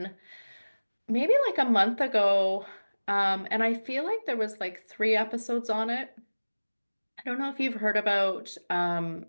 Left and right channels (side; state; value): both; inverted; correlation -1.00